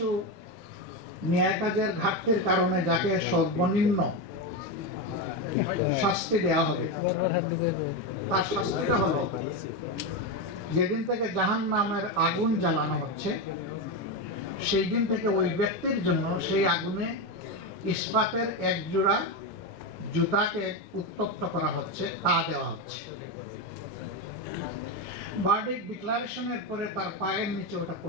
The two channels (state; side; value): normal; both; correlation 0.12